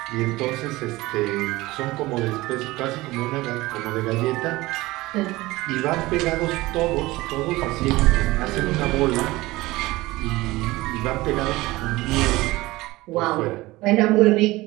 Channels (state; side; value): quieter; left; 19.6 dB